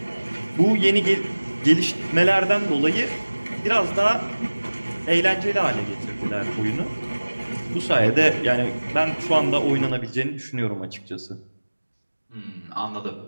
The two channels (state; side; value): inverted; both; correlation -1.00